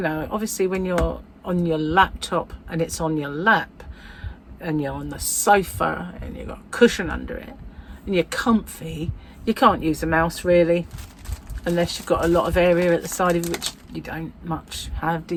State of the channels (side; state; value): both; identical; correlation 1.00